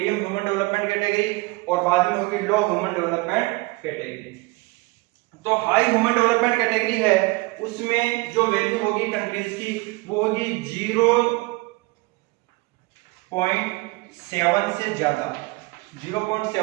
ह्यूमन डेवलपमेंट कैटेगरी और बाद में होगी लो ह्यूमन डेवलपमेंट कैटेगरी। तो हाई ह्यूमन डेवलपमेंट कैटेगरी है उसमें जो वैल्यू होगी कंट्रीज की वो होगी 0.7 से ज्यादा,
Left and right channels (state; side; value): quieter; left; 24.5 dB